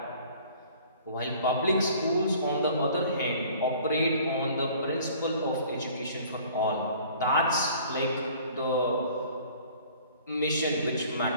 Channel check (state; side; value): inverted; both; correlation -0.51